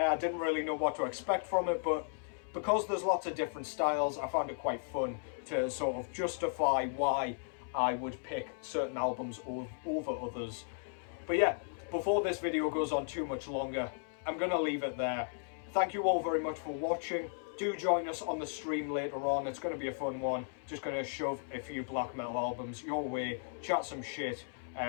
didn't really know what to expect from it, but because there's lots of different styles, I found it quite fun to sort of justify why I would pick certain albums over others. But yeah, before this video goes on too much longer, I'm going to leave it there. Thank you all very much for watching. Do join us on the stream later on. It's going to be a fun one. Just going to shove a few black metal albums your way, chat some shit.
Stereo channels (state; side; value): silent; right; 54 dB below the other